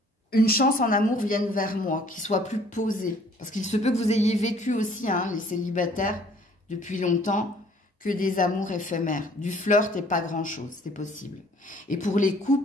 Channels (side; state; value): both; normal; correlation 0.57